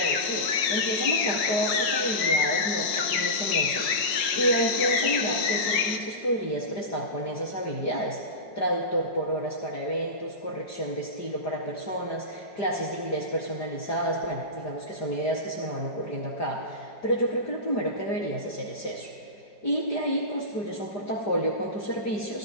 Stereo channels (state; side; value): late; right; 5.5 ms